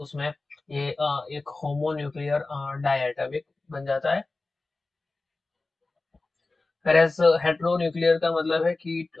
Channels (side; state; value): right; quieter; 3.4 dB